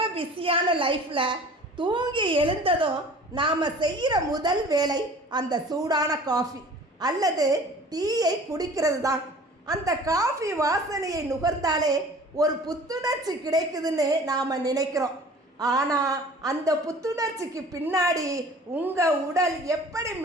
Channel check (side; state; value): both; normal; correlation 0.46